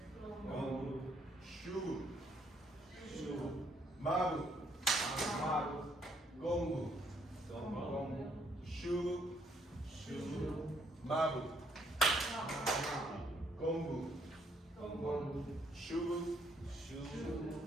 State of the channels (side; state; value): both; normal; correlation 0.69